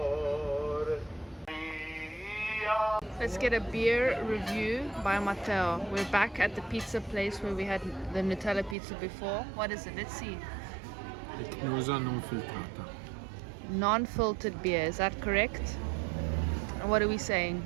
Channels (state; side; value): drops out; left; at 8.8 s